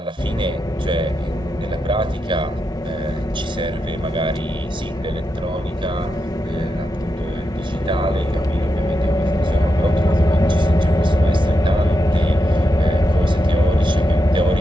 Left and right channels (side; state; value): both; normal; correlation 0.86